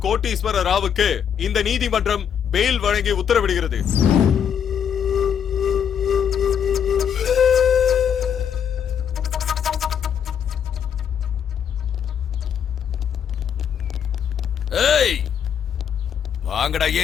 கோட்டீஸ்வர ராவுக்கு இந்த நீதிமன்றம் பெயில் வழங்கி உத்தரவிடுகிறது. ஏய், வாங்கடா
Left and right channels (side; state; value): right; quieter; 8.2 dB